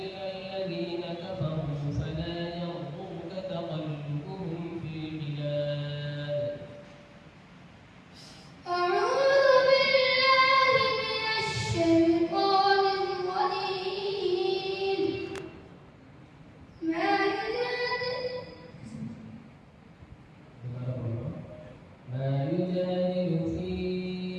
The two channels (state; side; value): identical; both; correlation 1.00